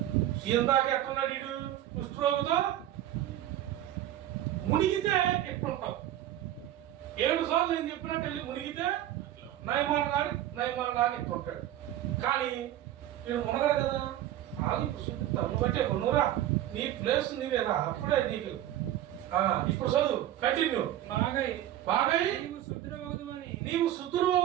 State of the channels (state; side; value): quieter; left; 12.7 dB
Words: ఇందాక ఎట్టున్నాడు వీడు కుష్ఠరోగితో మునిగితే ఎట్టుంటావు 7 సార్లు నేను చెప్పినట్టు వెళ్ళి మునిగితే నయమానగాడు ఎట్టుంటాడు. కానీ వీడు మునగడు కదా. ఇప్పుడు చూపిస్తాను బట్టే నువ్వురా నీ ప్లేస్ నీవేరా అప్పుడే నీకు. ఇప్పుడు చదువు కంటిన్యూ. బాగై నీవు శుద్ధుడు